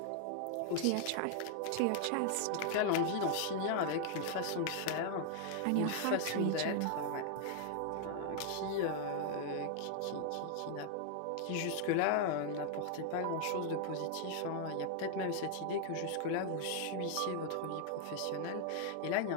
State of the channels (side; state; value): both; different; correlation 0.00